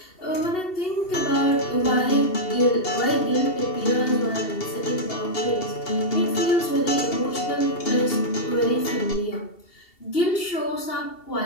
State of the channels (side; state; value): right; late; 2.7 ms